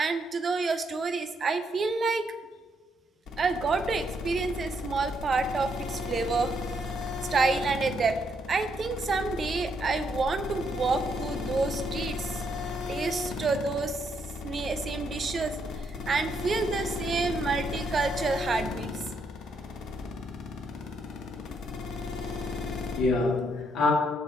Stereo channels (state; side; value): normal; both; correlation 0.75